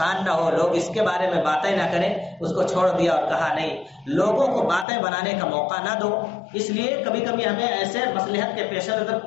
نہ ہو، لوگ اس کے بارے میں باتیں نہ کریں، اس کو چھوڑ دیا اور کہا نہیں، لوگوں کو باتیں بنانے کا موقع نہ دو. اس لیے کبھی کبھی ہمیں ایسے مصلحت کے پیش نظر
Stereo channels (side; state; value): right; drops out; at 4.9 s